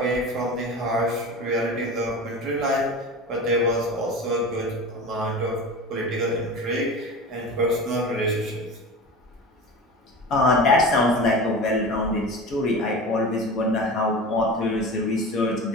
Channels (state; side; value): normal; both; correlation 0.32